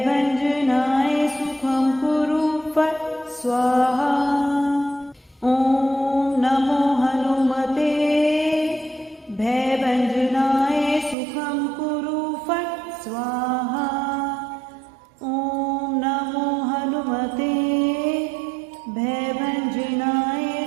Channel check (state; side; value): drops out; left; at 11.2 s